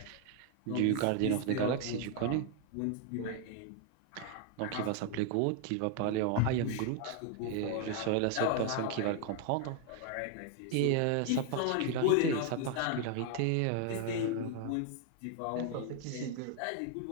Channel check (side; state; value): both; different; correlation 0.00